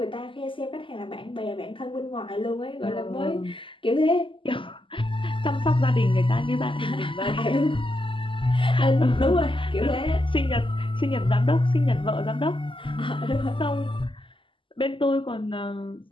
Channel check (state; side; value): late; right; 0.25 ms